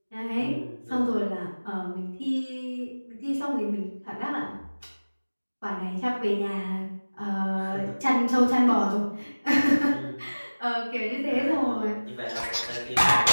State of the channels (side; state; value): both; inverted; correlation -1.00